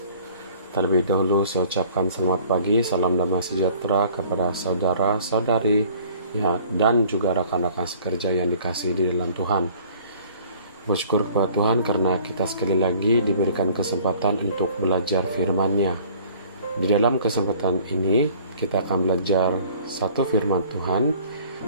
Terlebih dahulu saya ucapkan selamat pagi, salam damai sejahtera kepada saudara-saudari ya, dan juga rekan-rekan sekerja yang dikasihi di dalam Tuhan. Bersyukur kepada Tuhan karena kita sekali lagi diberikan kesempatan untuk belajar firman-Nya. Di dalam kesempatan ini kita akan belajar satu firman Tuhan,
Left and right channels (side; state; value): both; inverted; correlation -0.52